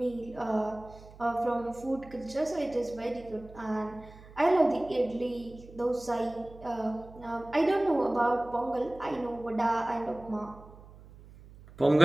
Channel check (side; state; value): right; noise; hum, 20 dB below the sound